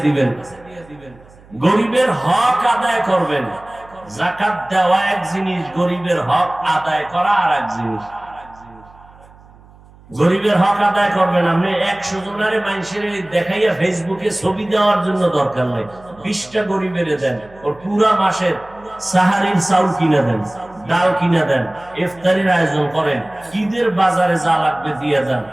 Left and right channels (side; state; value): right; noise; hum, 25 dB below the sound